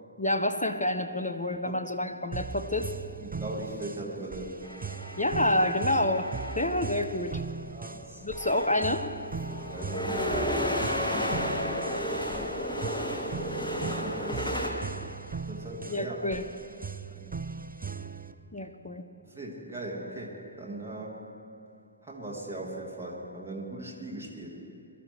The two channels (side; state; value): both; inverted; correlation -0.36